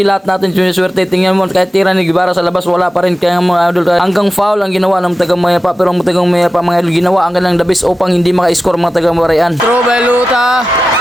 lahat natin siniswerte. Tingnan mo, kahit tira ni Guevara sa labas, wala pa rin. Kaya mga idol, hanggang foul ang ginawa ng tagang Mayapa, pero ang tagang Mayapa mga idol, ginawa ang kanilang dabis upang hindi maka-score mga tagang Parian. Throw by Luta,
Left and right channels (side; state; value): both; normal; correlation 0.94